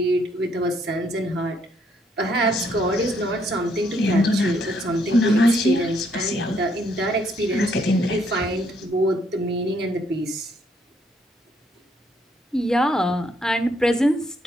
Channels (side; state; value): both; normal; correlation 0.70